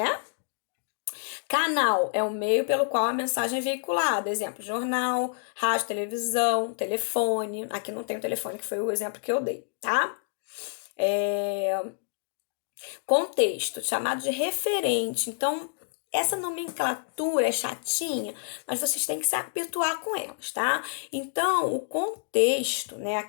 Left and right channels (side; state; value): right; silent; digital silence